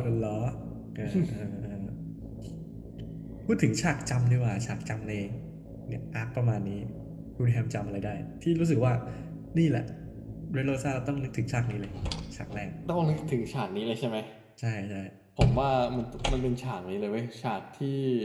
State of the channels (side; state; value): both; identical; correlation 1.00